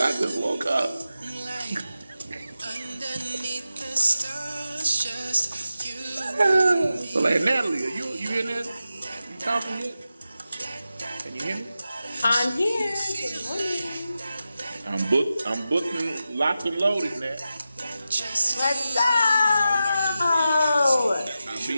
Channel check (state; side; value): inverted; both; correlation -0.92